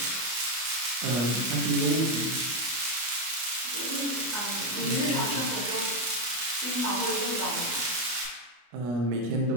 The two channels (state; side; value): late; left; 25 ms